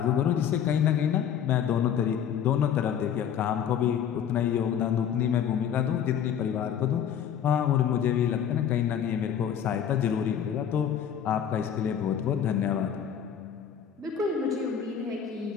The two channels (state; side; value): quieter; right; 8.8 dB